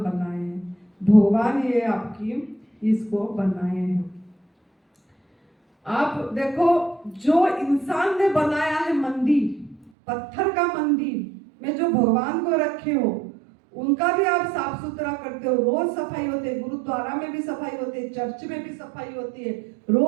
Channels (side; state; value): left; drops out; at 9.9 s